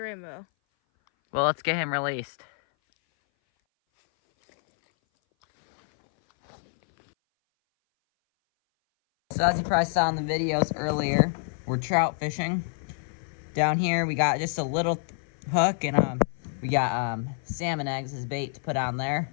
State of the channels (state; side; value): silent; right; 58 dB below the other